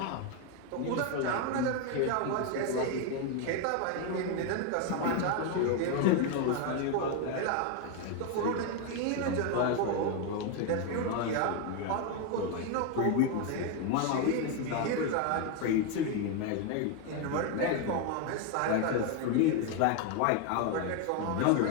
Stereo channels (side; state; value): both; different; correlation 0.01